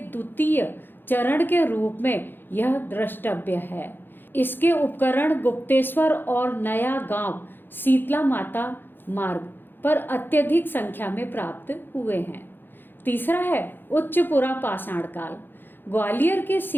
चरण के रूप में यह द्रष्टव्य है। इसके उपकरण गुप्तेश्वर और नया गांव शीतला माता मार्ग पर अत्यधिक संख्या में प्राप्त हुए हैं। तीसरा है उच्चपुरा पाषाण काल, ग्वालियर के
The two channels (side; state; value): right; late; 0.097 ms